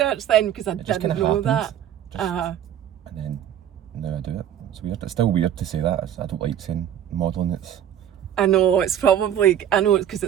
then because I didn't know that. And then now I do it. It's weird. It's still weird to say that. I don't like saying modelling. I know it's probably because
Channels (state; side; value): quieter; left; 10.3 dB